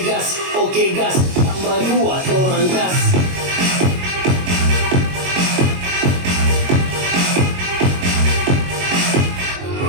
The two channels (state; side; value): late; left; 22 ms